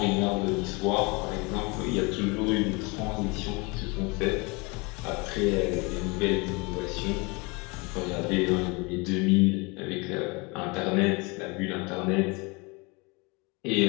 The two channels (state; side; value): quieter; right; 28.1 dB